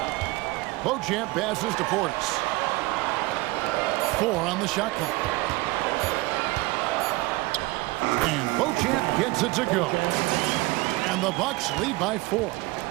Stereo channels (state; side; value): quieter; left; 21.5 dB